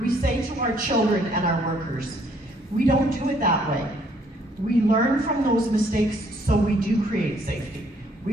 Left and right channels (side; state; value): both; normal; correlation 0.65